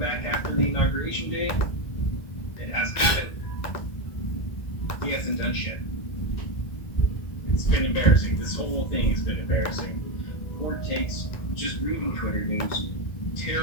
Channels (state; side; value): late; right; 1.5 ms